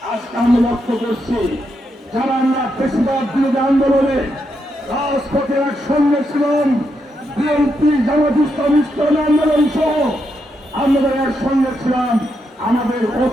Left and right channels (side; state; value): both; normal; correlation 0.82